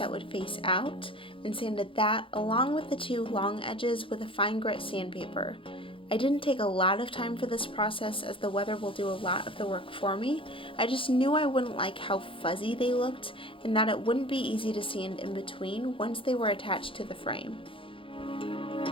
would face out and sanded that along with the 2 long edges with a fine grit sandpaper. I didn't take a lot of time for this process as the weather will do a lot of the work for me. I just knew I wouldn't like how fuzzy they looked and that it wouldn't be easy to sand in between once they were attached to the frame.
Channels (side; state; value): right; late; 0.25 ms